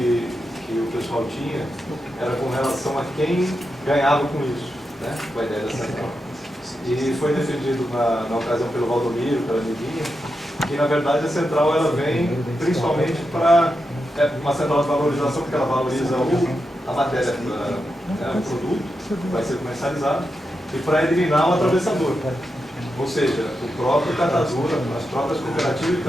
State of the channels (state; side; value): normal; both; correlation 0.87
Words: o pessoal tinha era com relação a quem ganhava com isso, né, com a ideia da central. E foi defendido na ocasião pelo Valdomiro, pela Nidinha, que na verdade a central ela vem principalmente para uma central de valorização, porque ela valoriza a matéria, o produto que vai ser comercializado, e para eliminar o atravessador. Ou seja, o próprio catador, as próprias cooperativas de